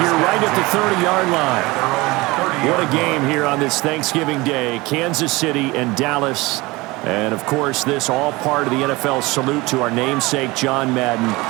here right at the 30-yard line. What a game here on this Thanksgiving Day. Kansas City and Dallas. And, of course, this all part of the NFL salute to our namesake, John Madden.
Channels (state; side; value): quieter; left; 22.3 dB